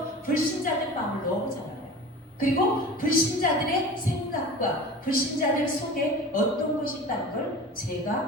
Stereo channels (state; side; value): normal; both; correlation 0.36